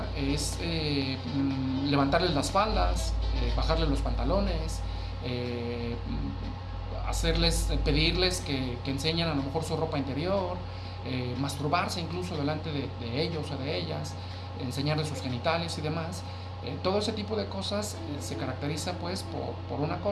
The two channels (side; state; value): both; identical; correlation 1.00